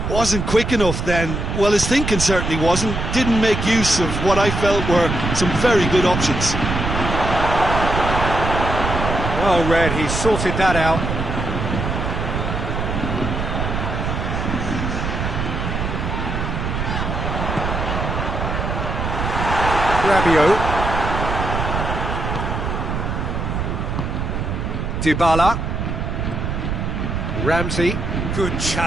wasn't quick enough then. Well, his thinking certainly wasn't. Didn't make use of what I felt were some very good options. Well read, he sorted that out. Rabiot. Dybala. Ramsey. Good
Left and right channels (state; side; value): noise; right; rumble, 2 dB below the sound